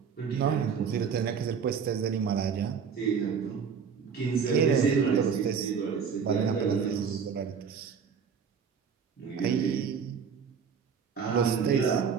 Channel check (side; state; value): left; quieter; 6.6 dB